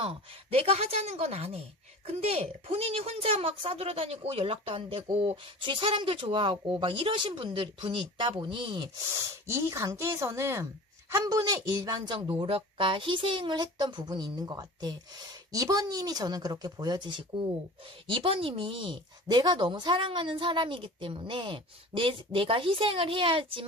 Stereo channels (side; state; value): both; normal; correlation 0.38